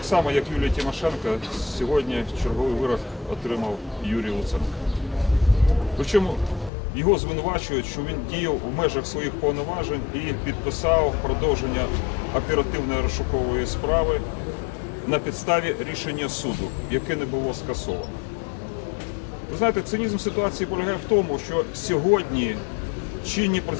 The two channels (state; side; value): drops out; right; at 6.7 s